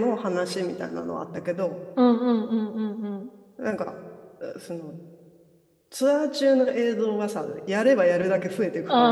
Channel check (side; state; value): both; identical; correlation 1.00